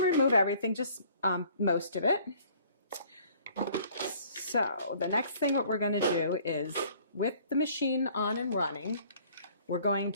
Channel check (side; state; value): both; inverted; correlation -0.56